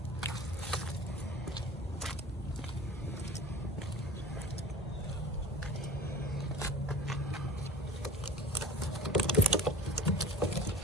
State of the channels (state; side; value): normal; both; correlation 0.37